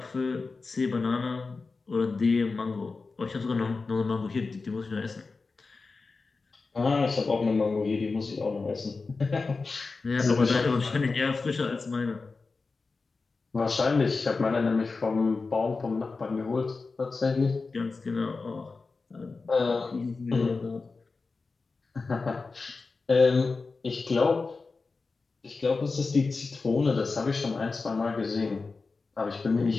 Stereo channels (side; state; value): right; quieter; 4.1 dB